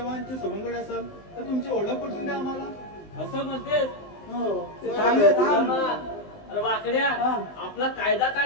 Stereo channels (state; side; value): late; right; 20 ms